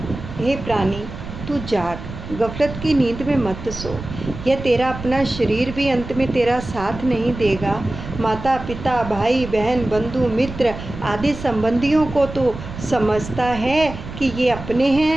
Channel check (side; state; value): right; noise; rumble, 11 dB below the sound